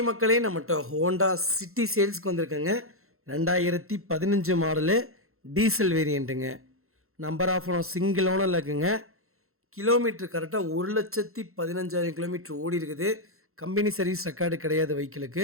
மக்களே, நம்மகிட்ட Honda City சேல்ஸ்க்கு வந்திருக்கேங்க. 2015 மாடலு டீசல் வேரியண்ட்டுங்க. நம்பர் ஆஃப் ஓனர் சிங்கிள் ஓனரில் இருக்குங்க. கிலோமீட்டர் கரெக்டாக 1,15,000 கிலோமீட்டர் ஓடி இருக்குது. கம்பெனி சர்வீஸ் ரெக்கார்டு கிடையாது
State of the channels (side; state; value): left; late; 0.62 ms